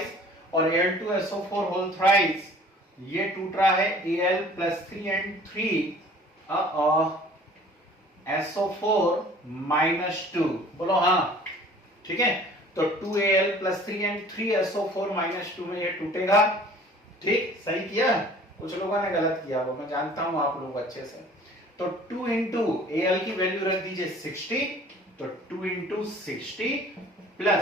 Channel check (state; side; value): normal; both; correlation 0.49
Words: और Al2SO4 होल थ्राइस ये टूट रहा है Al plus 3 and 3 SO4 minus 2. बोलो हाँ. ठीक है, तो 2Al plus 3 and 3 SO4 minus 2 में ये टूटेगा. ठीक, सही किया? कुछ लोगों ने गलत किया, वो मैं जानता हूं आप लोग अच्छे से. तो 2 इंटू Al की वैल्यू रख दीजिए 60, तो 2 इंटू 60